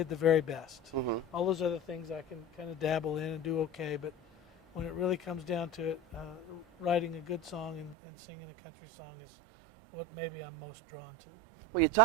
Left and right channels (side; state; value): left; drops out; at 8.0 s